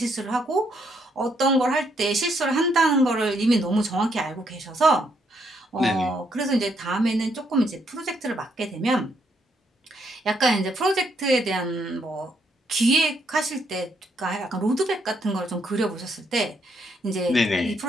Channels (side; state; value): both; normal; correlation 0.74